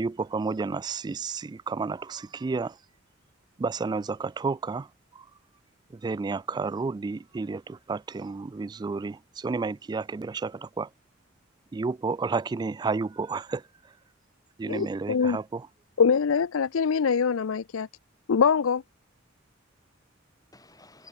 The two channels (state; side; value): normal; both; correlation 0.02